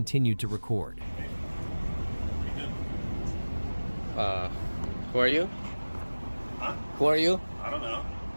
to record. Who are you? Huh? Who are you? I don't know.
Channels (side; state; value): both; inverted; correlation -1.00